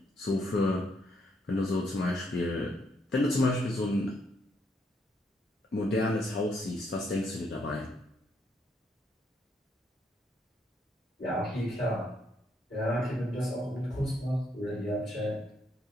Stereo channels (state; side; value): normal; both; correlation 0.74